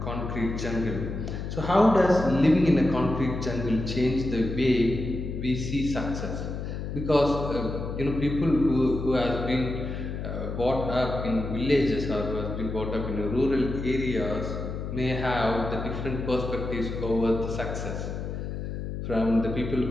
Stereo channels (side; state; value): left; noise; hum, 5 dB below the sound